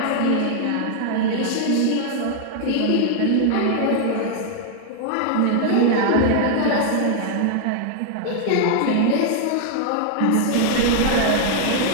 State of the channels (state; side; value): different; both; correlation 0.00